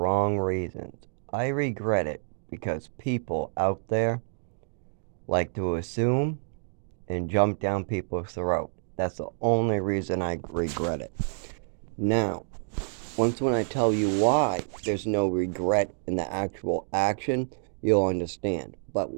reasons. I regret it because people out there like to assume and jump down people's throat. That's the only reason I regret it. Now, once when I tell you why there's no regret in the actual action, you'll understand. But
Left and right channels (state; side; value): silent; left; digital silence